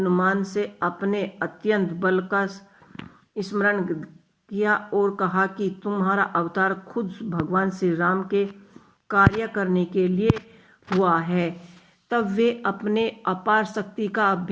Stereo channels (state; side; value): identical; both; correlation 1.00